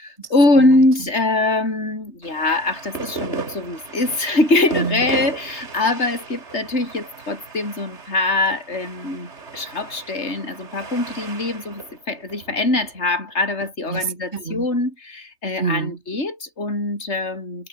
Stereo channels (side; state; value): right; late; 3.3 ms